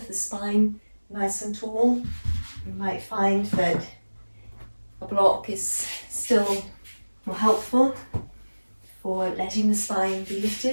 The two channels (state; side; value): inverted; both; correlation -1.00